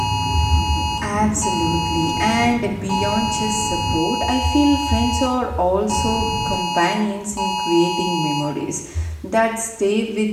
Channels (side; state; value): both; identical; correlation 1.00